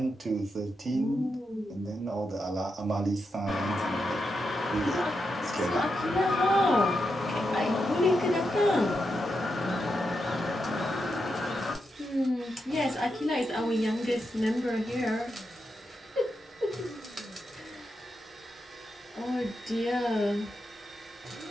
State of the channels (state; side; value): normal; both; correlation 0.86